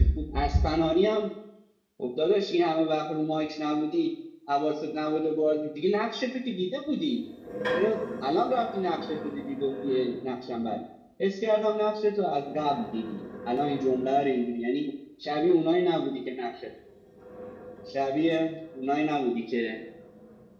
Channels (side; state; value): both; identical; correlation 1.00